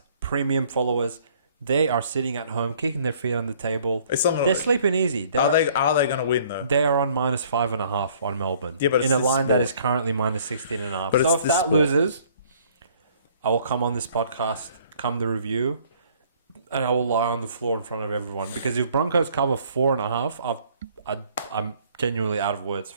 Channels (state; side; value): inverted; both; correlation -0.58